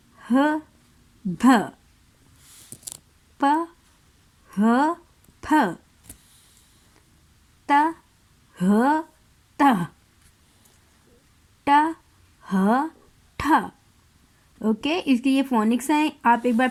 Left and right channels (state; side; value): identical; both; correlation 1.00